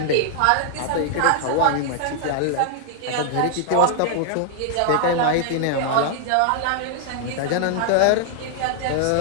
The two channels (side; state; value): both; different; correlation 0.00